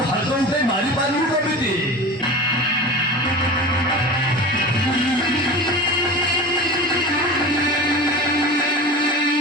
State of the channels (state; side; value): normal; both; correlation 0.32